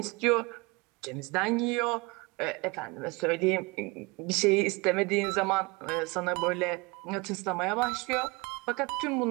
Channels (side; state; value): left; quieter; 26.3 dB